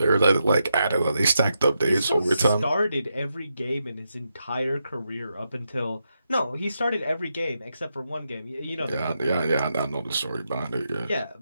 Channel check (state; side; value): inverted; both; correlation -0.84